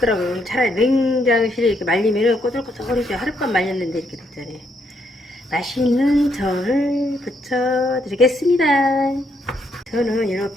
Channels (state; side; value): normal; both; correlation 0.75